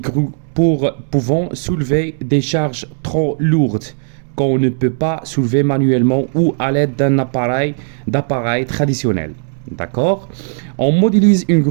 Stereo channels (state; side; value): silent; left; digital silence